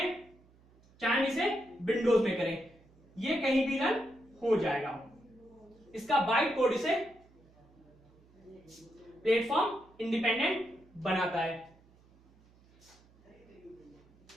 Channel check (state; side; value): noise; right; hum, 29 dB below the sound